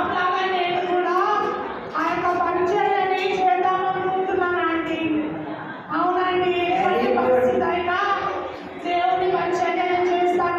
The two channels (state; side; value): identical; both; correlation 1.00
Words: లాగా నేను కూడా ఆ యొక్క పరిచయాన్ని చేద్దాం అనుకుంటున్నాను ఆంటీ. అవునండి, ఎటువంటి పరిస్థితి అయినా దేవుని పరిచయం